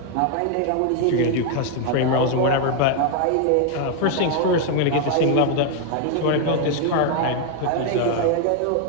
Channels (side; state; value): both; different; correlation 0.01